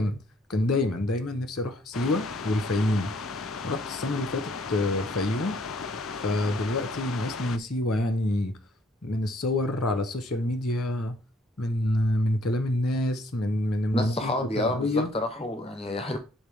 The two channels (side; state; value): both; normal; correlation 0.64